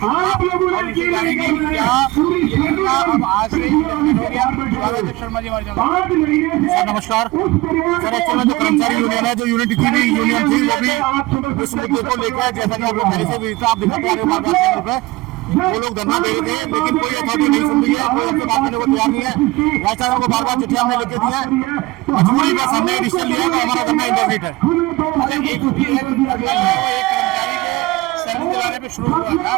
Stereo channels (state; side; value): quieter; left; 20.4 dB